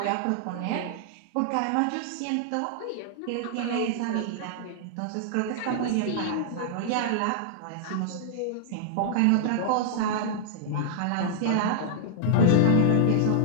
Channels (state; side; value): different; both; correlation -0.01